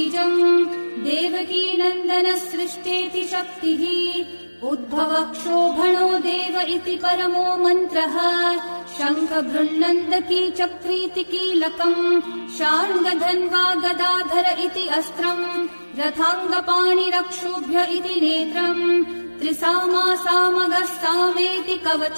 देवकी नन्दनः सृष्टेति शक्तिः उद्भवक्षोभणो देव इति परमो मन्त्रः शङ्खभृन्नन्दकी चक्रीति कीलकम् शार्ङ्गधन्वा गदाधर इति अस्त्रम् रथाङ्गपाणिरक्षोभ्य इति नेत्रम् त्रिसामासामगः सामेति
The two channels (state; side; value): inverted; both; correlation -1.00